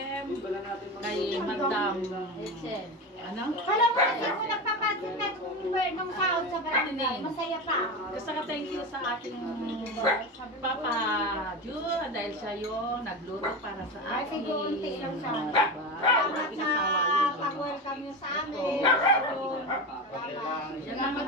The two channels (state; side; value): normal; both; correlation 0.22